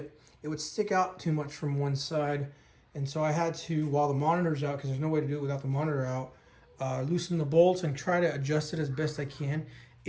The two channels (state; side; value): identical; both; correlation 1.00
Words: it would stick out too much from one side. And so I had to, while the monitor's out, because there's no way to do it without the monitor out, loosen the bolts and try to adjust it as best I can.